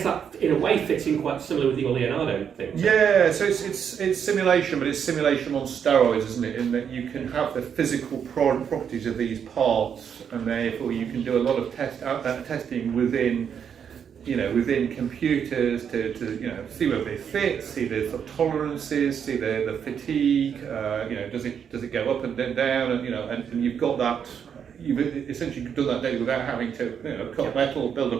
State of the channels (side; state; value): left; quieter; 7.7 dB